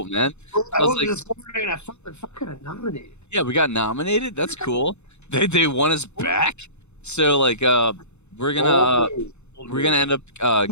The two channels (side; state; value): right; late; 0.82 ms